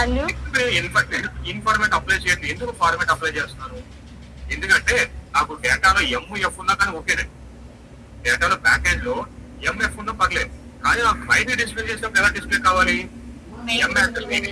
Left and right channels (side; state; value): both; identical; correlation 1.00